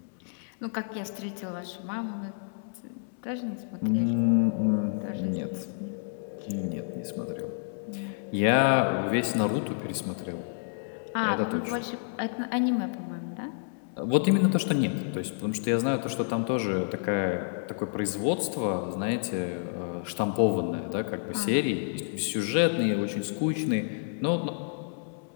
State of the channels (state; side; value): silent; right; digital silence